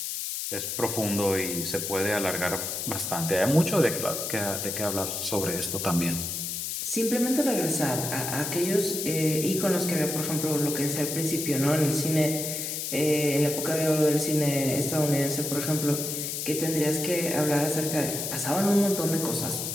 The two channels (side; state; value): left; noise; hiss, 3 dB below the sound